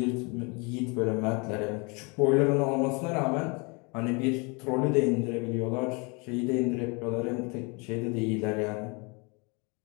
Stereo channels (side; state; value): right; quieter; 30.6 dB